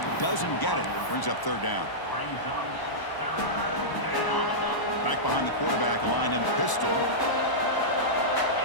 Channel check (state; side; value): late; right; 1.0 ms